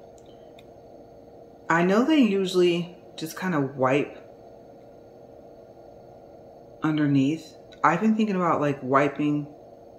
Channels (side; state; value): both; identical; correlation 1.00